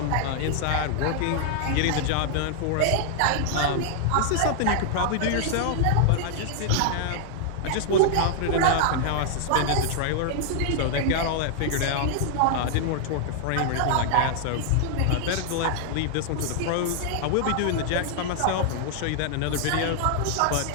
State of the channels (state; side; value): different; both; correlation -0.01